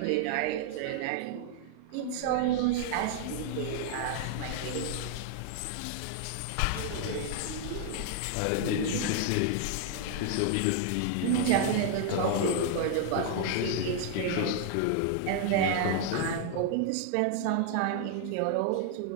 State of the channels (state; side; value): different; both; correlation 0.00